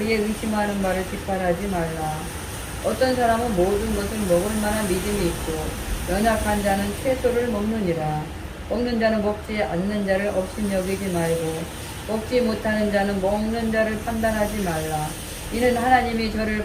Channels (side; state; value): both; identical; correlation 1.00